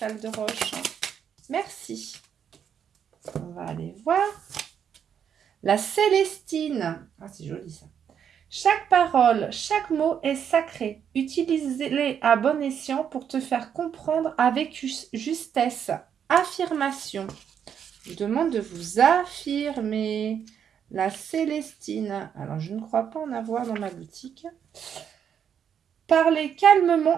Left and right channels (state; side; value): quieter; left; 8.2 dB